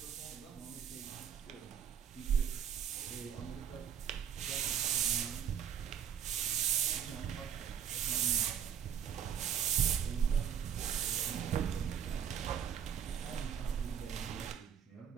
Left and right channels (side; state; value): left; quieter; 8.5 dB